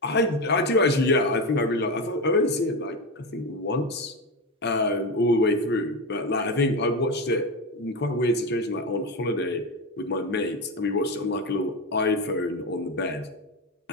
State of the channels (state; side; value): normal; both; correlation 0.17